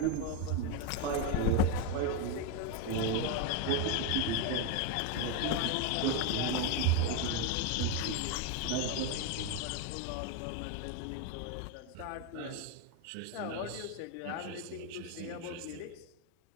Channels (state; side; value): different; both; correlation 0.02